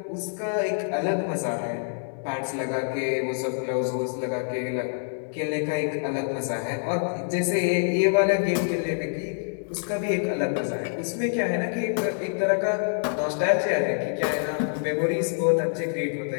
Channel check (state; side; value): silent; right; digital silence